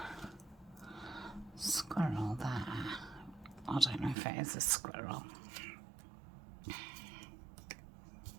squirrel there. I don't know if it is a squirrel.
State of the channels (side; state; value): left; drops out; at 4.2 s